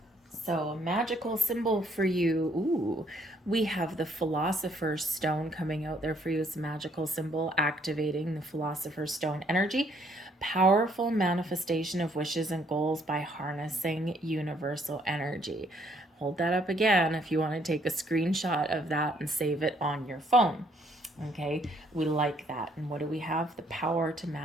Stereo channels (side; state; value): both; normal; correlation 0.66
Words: So a magical symbol for you. Ooh, we have the Philosopher's Stone coming out there for you as a magical symbol, activating the Philosopher's Stone energy. Powerful manifestation of wishes and goals by harnessing universal energy. Hold that up again if you want to take a screenshot of that and save it on your phone. Okay, we like that. And what do we have? The power to